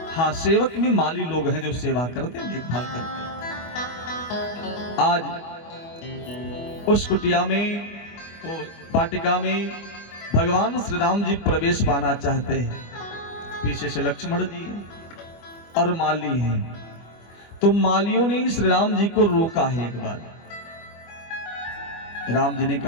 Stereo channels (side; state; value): right; late; 24 ms